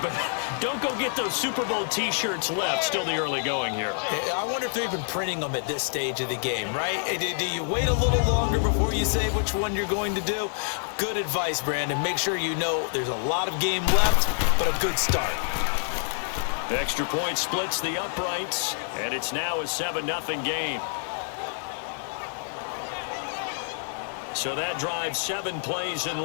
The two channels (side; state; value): right; silent; digital silence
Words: but don't go get those Super Bowl T-shirts left. Still the early going here. I wonder if they're even printing them at this stage of the game, right? Do you wait a little longer before you say which one you're going to do? Good advice, Brandon. Make sure you know there's a lot of game left, but a good start. Extra point splits the uprights, and it's now a 7-0 game. So that drives 7 plays in